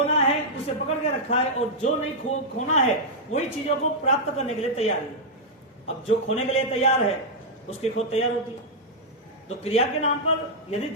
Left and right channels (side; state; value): both; normal; correlation -0.06